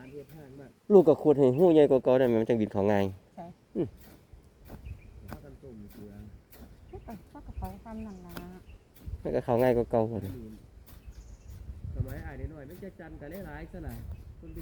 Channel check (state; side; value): identical; both; correlation 1.00